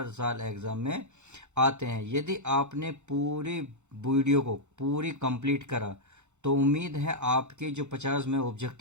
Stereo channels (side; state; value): left; late; 0.83 ms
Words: साल एग्ज़ाम में आते हैं। यदि आपने पूरी वीडियो को पूरी कंप्लीट करा तो उम्मीद है आपके जो 50 में